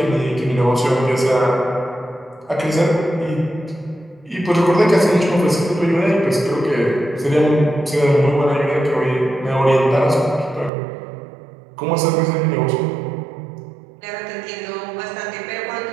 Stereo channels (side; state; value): left; drops out; at 10.7 s